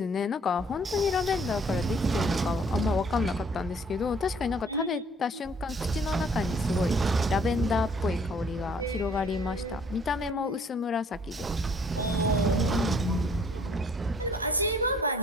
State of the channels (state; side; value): normal; both; correlation 0.59